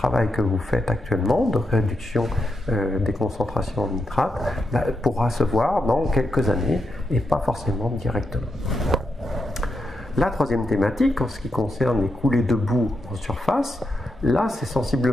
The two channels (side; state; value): both; normal; correlation 0.84